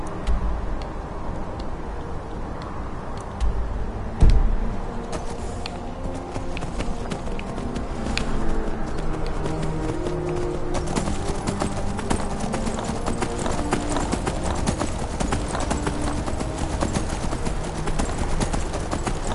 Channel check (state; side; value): identical; both; correlation 1.00